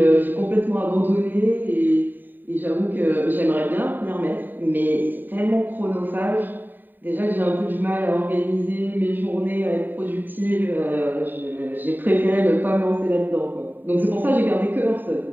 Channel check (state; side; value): late; left; 0.091 ms